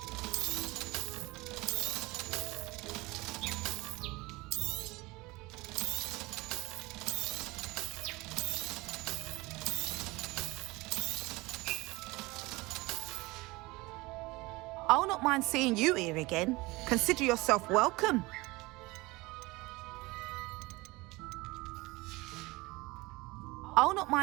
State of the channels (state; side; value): quieter; left; 22.3 dB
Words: I'll not mind seeing you here again. Consider yourself welcome. I'll not